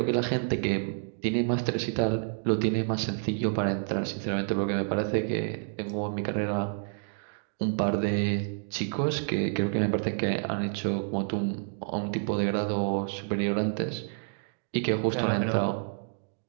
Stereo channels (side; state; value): left; silent; digital silence